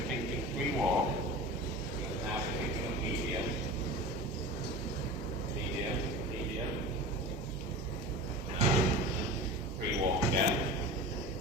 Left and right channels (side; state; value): both; normal; correlation 0.33